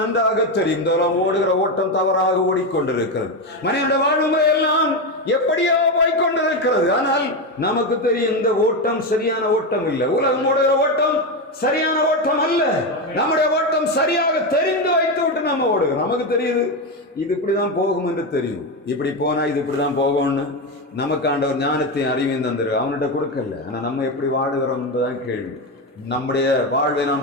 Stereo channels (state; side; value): normal; both; correlation 0.12